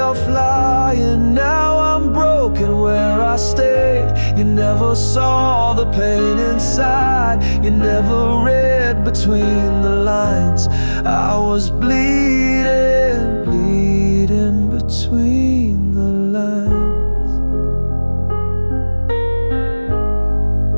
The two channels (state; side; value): inverted; both; correlation -1.00